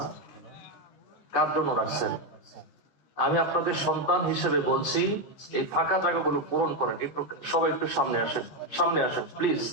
কার জন্য রাখছেন? আমি আপনাদের সন্তান হিসেবে বলছি, এই ফাঁকা জায়গাগুলো পূরণ করেন। একটু সবাই একটু সামনে আসেন, সামনে আসেন প্লিজ।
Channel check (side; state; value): right; late; 14 ms